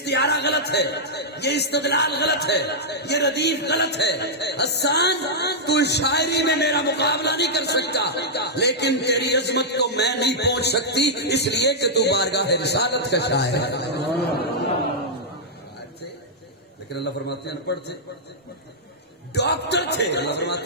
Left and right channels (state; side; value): normal; both; correlation -0.08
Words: غلط ہے، یہ استدلال غلط ہے، یہ ردیف غلط ہے، حسان تو شاعری میں میرا مقابلہ نہیں کر سکتا، لیکن تیری عظمت کو میں نہیں پہنچ سکتی، اس لیے کہ تو بارگاہ رسالت کا شاعر ہے۔ لیکن اللہ فرماتے ہیں ان پڑھ تھے، ڈاکٹر تھے، اللہ فرماتے